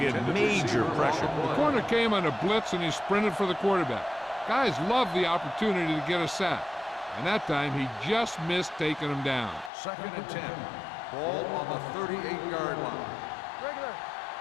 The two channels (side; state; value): right; drops out; at 9.7 s